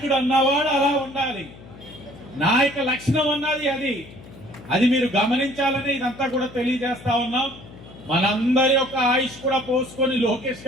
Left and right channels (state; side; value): noise; left; hum, 19 dB below the sound